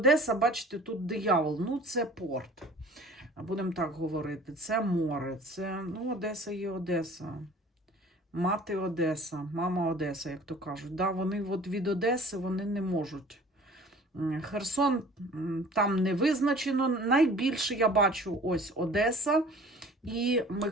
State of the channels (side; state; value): both; normal; correlation 0.47